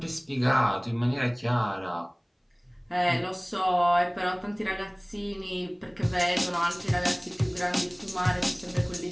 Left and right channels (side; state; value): both; identical; correlation 1.00